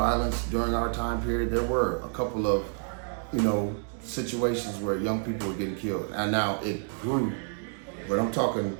during our time period. There were a couple of, you know, situations where young people were getting killed. And now it grew. But I'm talking,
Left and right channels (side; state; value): left; silent; 57 dB below the other